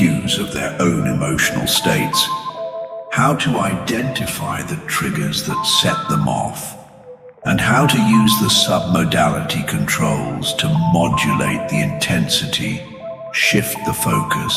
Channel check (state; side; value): identical; both; correlation 1.00